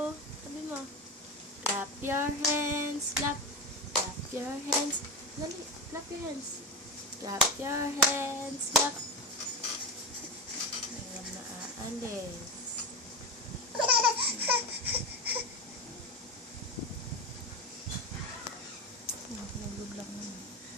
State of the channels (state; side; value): normal; both; correlation 0.18